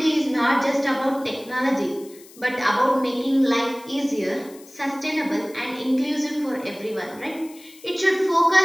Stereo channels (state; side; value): noise; left; hiss, 22 dB below the sound